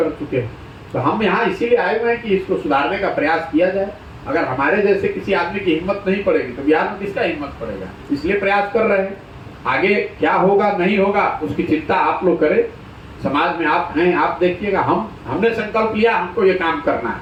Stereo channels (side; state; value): both; identical; correlation 1.00